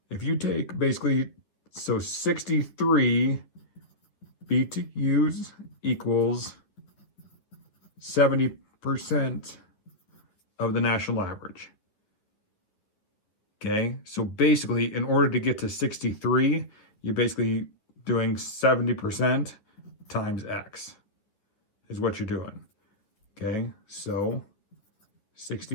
if you take basically, so 63 BTUs equals 70% of the national average. Okay, so basically, in order to get to 63, you're basically doing 70% times X is what you're doing. Okay, so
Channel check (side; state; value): right; late; 10 ms